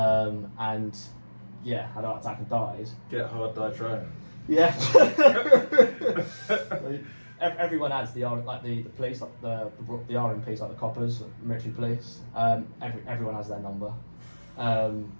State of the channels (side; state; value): both; inverted; correlation -1.00